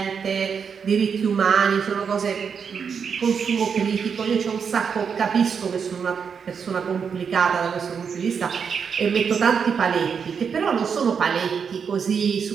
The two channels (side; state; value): left; quieter; 6.5 dB